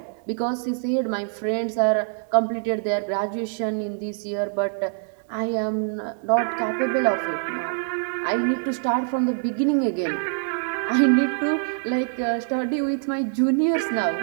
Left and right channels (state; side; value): silent; left; 62 dB below the other